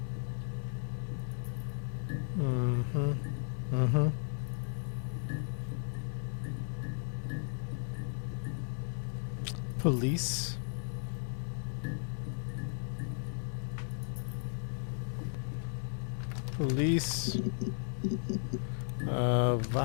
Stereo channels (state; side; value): silent; right; digital silence